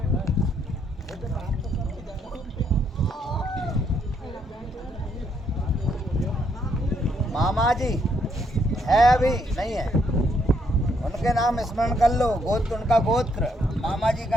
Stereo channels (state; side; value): normal; both; correlation 0.73